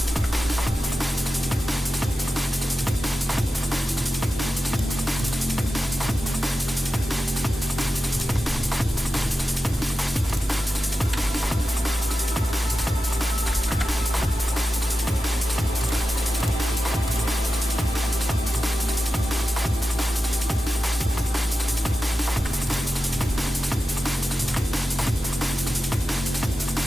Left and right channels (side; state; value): both; normal; correlation 0.93